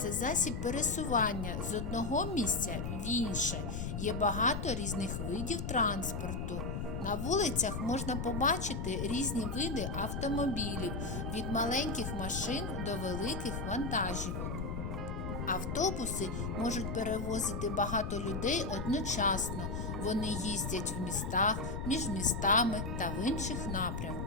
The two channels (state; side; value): noise; left; rumble, 3 dB below the sound